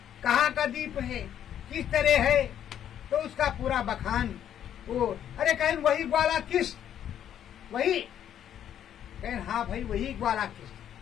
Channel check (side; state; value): right; quieter; 10.1 dB